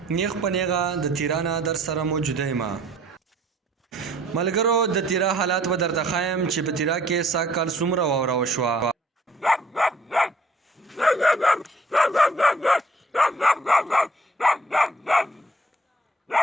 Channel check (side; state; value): both; normal; correlation 0.59